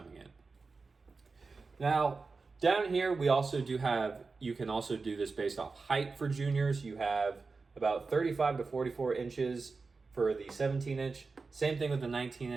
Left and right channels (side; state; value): left; quieter; 4.2 dB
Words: in. Now, down here, we also do have, you can also do this based off height for juniors. You have about 35 to 44 inches for the 17-inch. Same thing with the